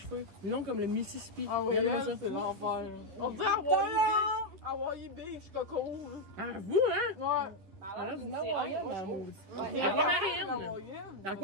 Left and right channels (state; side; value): late; left; 10 ms